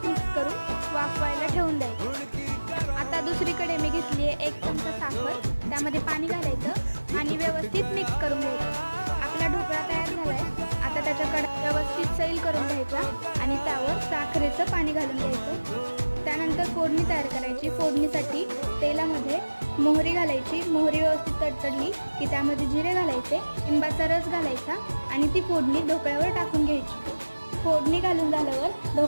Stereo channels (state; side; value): inverted; both; correlation -1.00